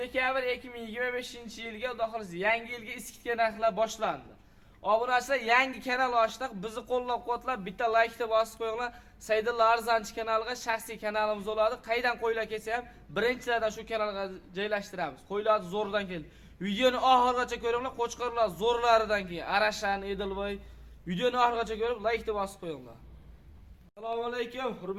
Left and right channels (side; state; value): both; identical; correlation 1.00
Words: 2025-yilga xudo xolasa yangi yilga iskitga narxlar boshlandi. Obunachilar yangi kanal ochdik. Bizni qo'llab-quvvatlab bitta laykni bosib qo'yinglar. Saydulla Arzanchi kanaliga shaxsiy kanalimiz bo'ladi. Qaydan qo'ylar kelsa ham birinchilardan shu kanalga joylashtiramiz. Qo'ylar zo'rdan keldi. Videoni oxirigacha ko'ringlar. Qo'chqorlar zo'rlaridan keyin Arashan, Edilboy. Videoni oxirigacha ko'rib laykni bosib qo'yinglar. Assalomu alaykum